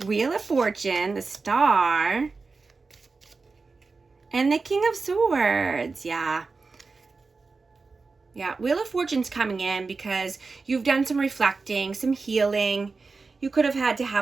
Wheel of Fortune, the Star, and the King of Swords. Yeah. Yeah, Wheel of Fortune's coming in because you've done some reflecting, some healing. You could have had to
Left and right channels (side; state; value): left; quieter; 4.2 dB